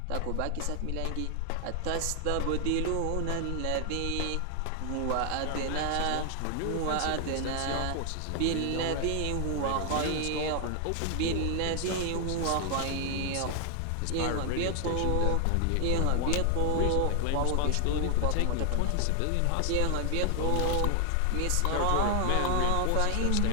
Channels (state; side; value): different; both; correlation 0.00